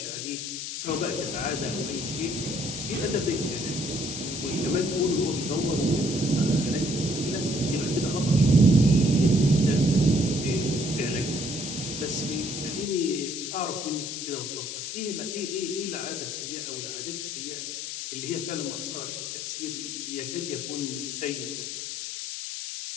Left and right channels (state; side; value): noise; left; hiss, 5 dB below the sound